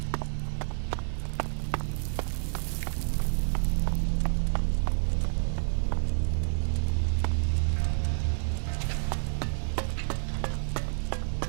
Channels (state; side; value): silent; left; digital silence